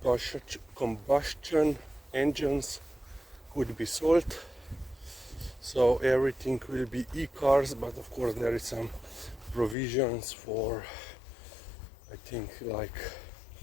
combustion engines could be sold. So everything will be e-cars, but of course there is some provisions for, I think, like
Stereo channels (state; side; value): drops out; right; at 9.8 s